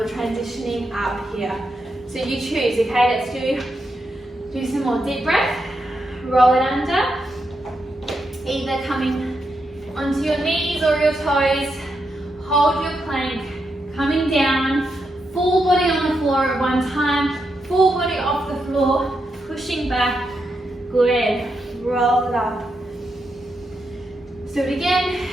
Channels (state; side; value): normal; both; correlation 0.84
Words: transitioning up here. So you choose, okay? Let's do some more deep breath. Roll it under, either coming onto your knees or your toes. Hold your plank, coming down, full body on the floor at one time, full body off the floor, pushing back. Good. Roll it up. Do it again,